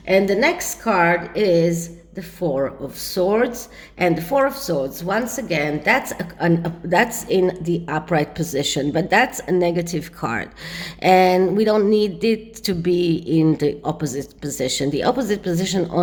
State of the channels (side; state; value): both; identical; correlation 1.00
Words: And the next card is the Four of Swords. And the Four of Swords, once again, that's in the upright position, but that's a negative card. And we don't need it to be in the opposite position. The opposite position